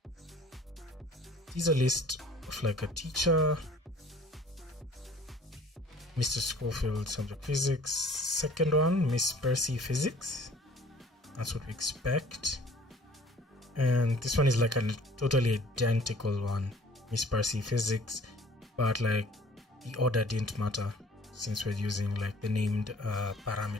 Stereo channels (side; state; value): both; normal; correlation 0.52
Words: these are list of like a teacher, Mr. Schofield, subject physics. Second one, Miss Percy, physics. That's what we expect. And this one is like a totally identical one, Miss Percy, physics, but like the order didn't matter since we're using like the named